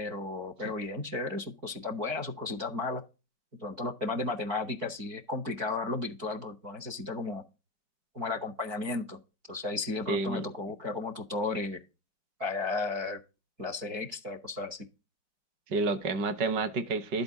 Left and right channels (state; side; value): late; left; 4.6 ms